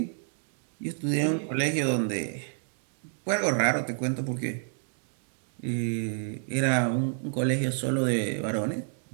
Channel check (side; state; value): left; silent; digital silence